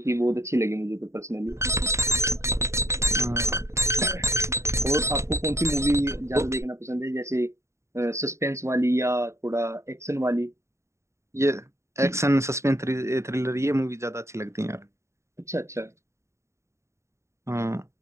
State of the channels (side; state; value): left; late; 0.14 ms